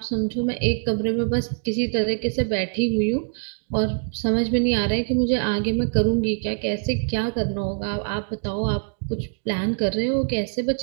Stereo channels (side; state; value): left; silent; digital silence